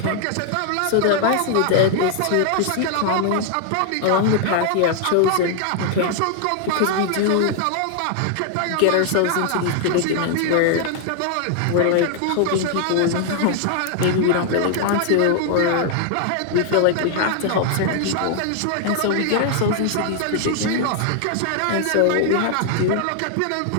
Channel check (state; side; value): different; both; correlation 0.00